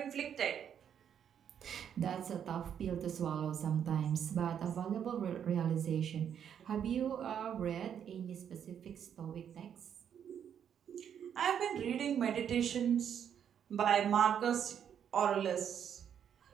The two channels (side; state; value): left; quieter; 8.6 dB